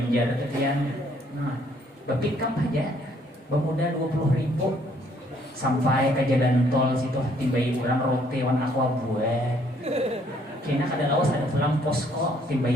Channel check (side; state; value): both; normal; correlation 0.65